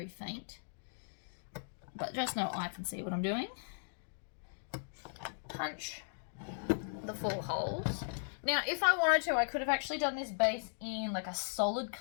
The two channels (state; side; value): silent; right; digital silence